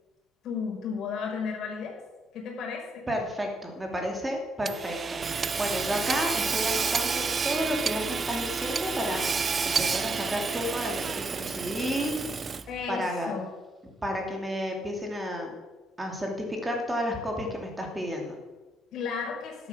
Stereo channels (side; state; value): both; normal; correlation 0.77